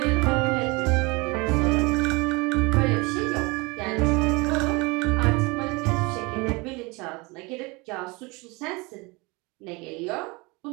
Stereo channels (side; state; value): left; quieter; 26.2 dB